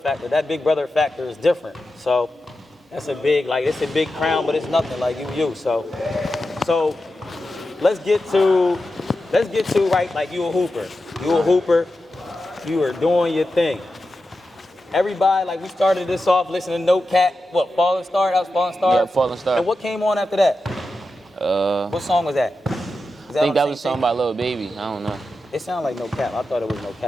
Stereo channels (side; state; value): both; normal; correlation 0.91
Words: That big brother factor is different. So that's a big, like, it's a big crown, but it's nothing like you. So let's get to right. Like, you a hooper. You are doing your thing. Everybody, like, we started this off listening to No Cat. What, Falling Star? That was Falling Star? Yeah, Falling Star. And what came on after that? What song was that? I think that was a song by Lil Baby. I don't know. It sounded like No Cap. I thought it was No